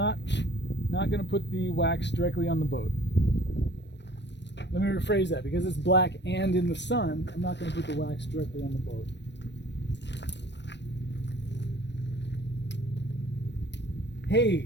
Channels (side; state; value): right; late; 0.51 ms